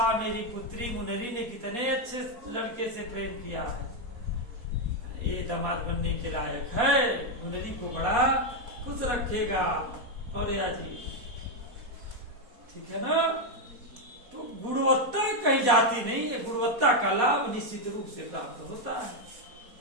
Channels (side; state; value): left; late; 4.2 ms